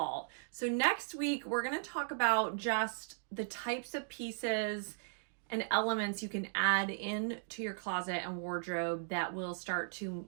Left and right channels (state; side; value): silent; left; digital silence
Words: So next week, we're going to talk about just the types of pieces and elements you can add in to your closet and wardrobe that will start to